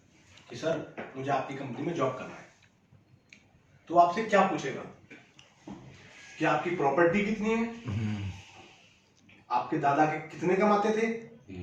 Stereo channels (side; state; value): both; identical; correlation 1.00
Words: कि सर मुझे आपकी कंपनी में जॉब करना है, तो आपसे क्या पूछेगा कि आपकी प्रॉपर्टी कितनी है, आपके दादा के कितने कमाते थे,